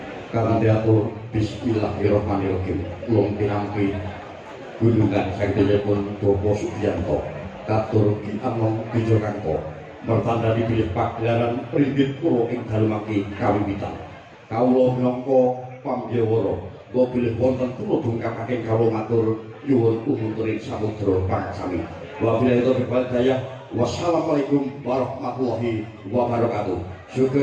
Kanthi atur bismillahirrahmanirrahim ulung pinampi gunungan saktipun Bopo Sugiyanto katur Ki Anom Wijokanto mertanda dipilih pagelaran Pringgit Purwo ing dalu mangke kawiwitan. Kawula minangka pambyawara kula bilih wonten kula dungkapaken kawula matur nyuwun umuturing samudra pangsami. Wabillahi taufiq wal hidayah. Wassalamualaikum warahmatullahi wabarakatuh.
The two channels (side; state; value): both; identical; correlation 1.00